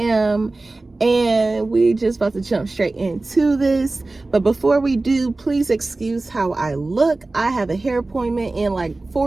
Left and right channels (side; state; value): left; quieter; 3.2 dB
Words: And we just about to jump straight into this. But before we do, please excuse how I look. I have a hair appointment in like